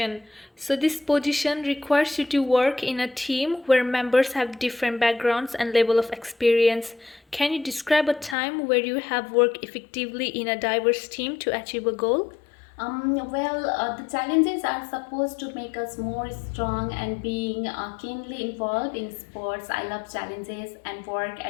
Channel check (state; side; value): drops out; right; at 8.3 s